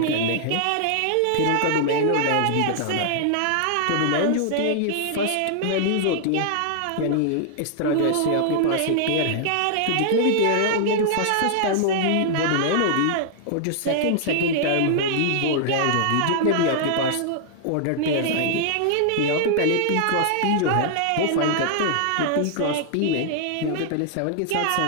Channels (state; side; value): different; both; correlation -0.01